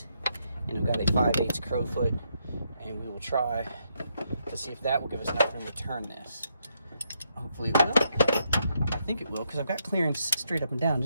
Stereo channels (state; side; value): inverted; both; correlation -0.78